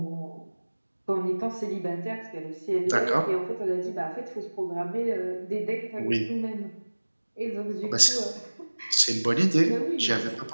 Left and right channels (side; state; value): both; inverted; correlation -1.00